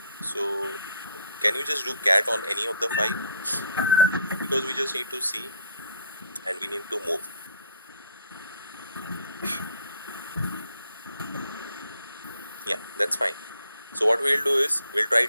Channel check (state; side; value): inverted; both; correlation -0.63